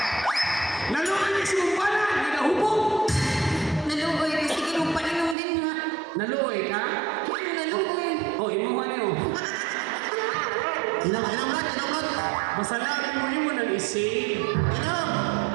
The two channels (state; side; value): drops out; left; at 5.4 s